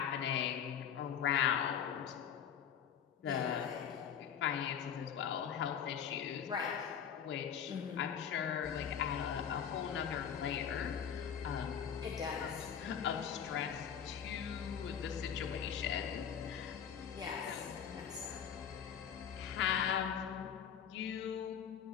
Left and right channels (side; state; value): right; quieter; 8.2 dB